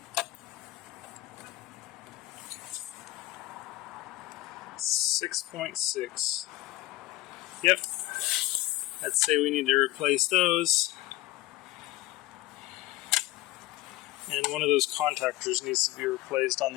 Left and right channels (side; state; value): right; quieter; 17.5 dB